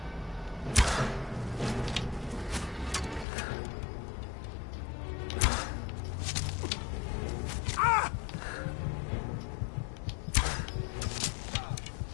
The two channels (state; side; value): drops out; right; at 3.2 s